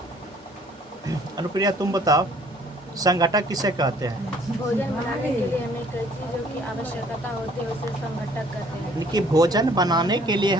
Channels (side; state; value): both; normal; correlation 0.58